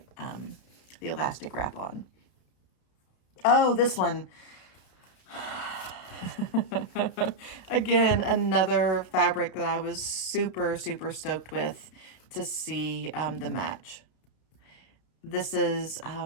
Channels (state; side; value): late; right; 32 ms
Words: the elastic wrap on. Oh, this one. Again, another fabric that I was super, super stoked with to see the match. This is